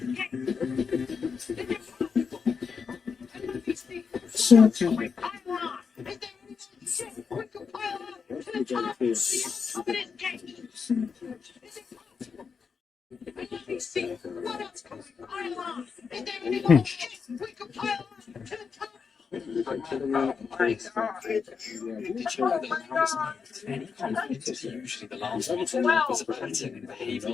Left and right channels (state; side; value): quieter; right; 5.8 dB